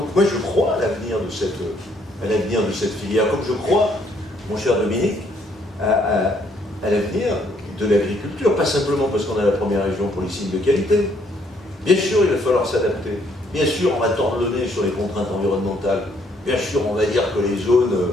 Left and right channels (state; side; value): normal; both; correlation 0.68